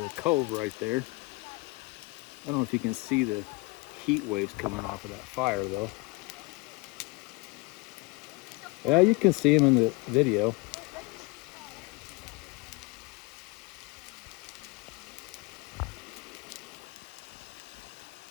cove right there. I don't know if you can see the heat waves coming off of that fire though. Yeah, you can see them in the video.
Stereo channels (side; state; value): right; quieter; 25.5 dB